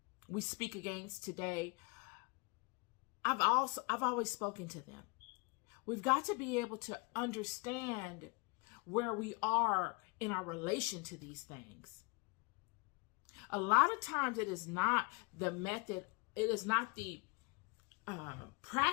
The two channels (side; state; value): right; quieter; 29.9 dB